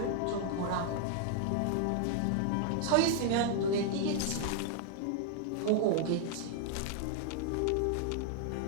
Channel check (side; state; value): both; different; correlation 0.00